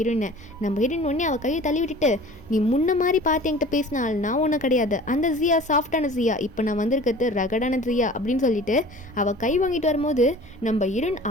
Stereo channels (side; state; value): both; normal; correlation 0.43